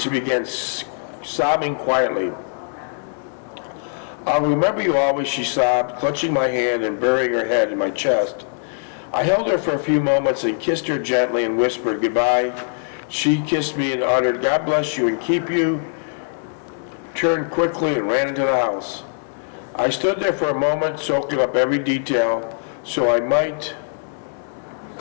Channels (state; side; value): silent; right; digital silence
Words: began sobbing quietly. "I'll remember you always," she sobbed, clutching my hand and burying her head in my chest. I held her for a few moments and kissed her gently and whispered goodbye. She kissed me and uttered, "God bless you and keep you," turned quickly and ran into the house. I stood there for a moment, soaking up every detail, so I might